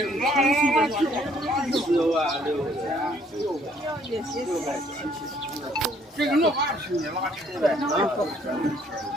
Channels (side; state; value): both; normal; correlation 0.63